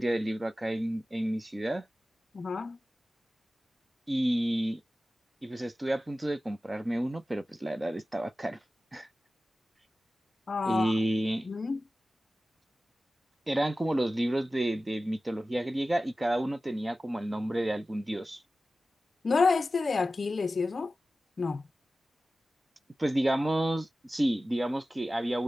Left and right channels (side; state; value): both; normal; correlation 0.95